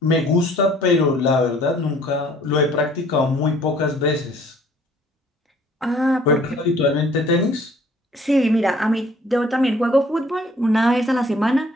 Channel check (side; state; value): both; normal; correlation 0.57